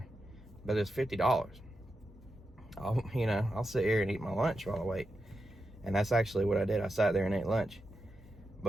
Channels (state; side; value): normal; both; correlation 0.88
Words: but it's $50. I'll sit here and eat my lunch while I wait. And that's actually what I did. I sat there and ate lunch.